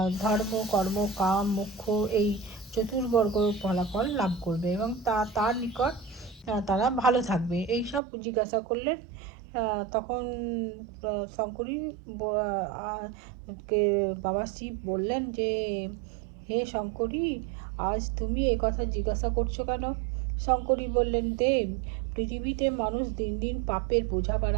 ধর্ম, কর্ম, কাম, মোক্ষ এই চতুর্বর্গ ফলাফল লাভ করবে এবং তার নিকট তারা ভালো থাকবে, এই সব জিজ্ঞাসা করলেন। তখন শঙ্করী কে বাবা শিব বললেন যে, হে শঙ্করী, আজ তুমি এ কথা জিজ্ঞাসা করছো কেন? শঙ্করী বললেন, দেব, পৃথিবীতে মানুষ দিন দিন পাপের বোঝা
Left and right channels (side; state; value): left; drops out; at 8.0 s